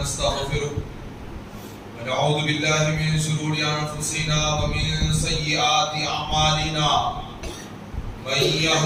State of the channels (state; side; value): identical; both; correlation 1.00